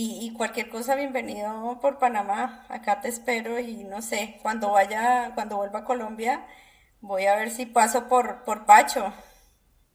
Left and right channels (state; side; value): identical; both; correlation 1.00